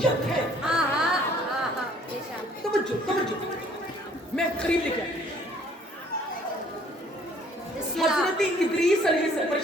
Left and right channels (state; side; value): normal; both; correlation 0.58